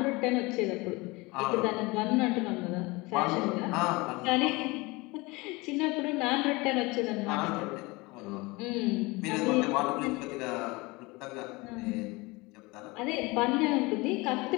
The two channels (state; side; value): quieter; right; 24.1 dB